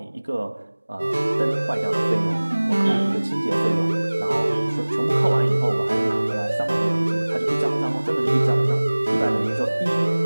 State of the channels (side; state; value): both; inverted; correlation -1.00